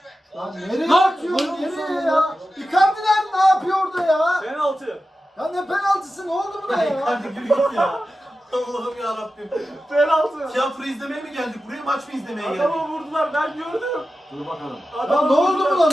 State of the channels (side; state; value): both; normal; correlation 0.93